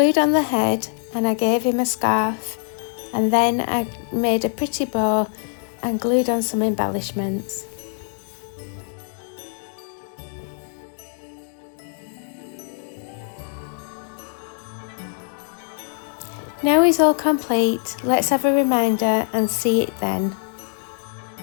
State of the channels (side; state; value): right; silent; 63 dB below the other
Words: on the head and I gave him a scarf, and then I made a pretty bow and glued on some embellishments. Now he's all complete, let's have a reminder and see it then.